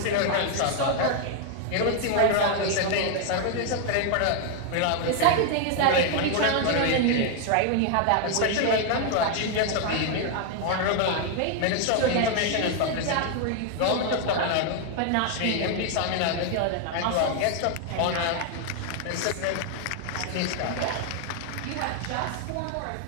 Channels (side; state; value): both; different; correlation 0.00